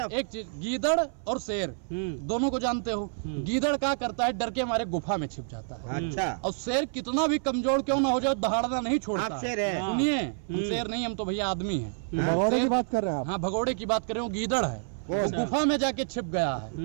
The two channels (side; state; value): left; silent; 56 dB below the other